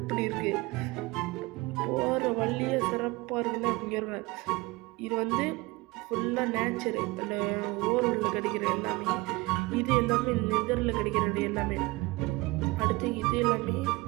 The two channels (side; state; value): left; quieter; 22.6 dB